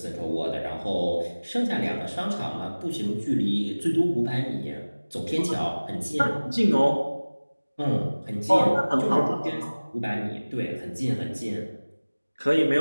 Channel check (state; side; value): inverted; both; correlation -1.00